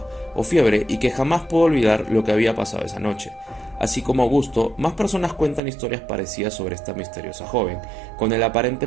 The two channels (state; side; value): drops out; left; at 5.6 s